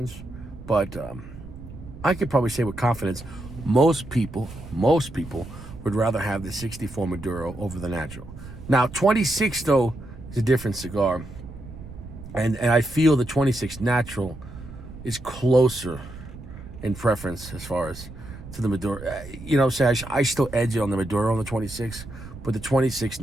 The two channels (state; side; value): noise; right; rumble, 14 dB below the sound